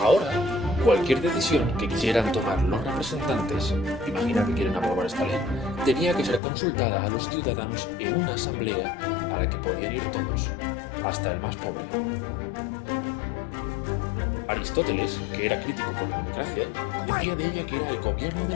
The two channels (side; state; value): right; drops out; at 6.4 s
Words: cualquier decisión que quisieran tomar los representantes, imagina que quieren aprobar esta ley, tenía que ser consultada a los ciudadanos en una asamblea a la que podían ir todos, hasta el más pobre. Aristóteles, que era crítico con la democracia, decía de ella que era el gobierno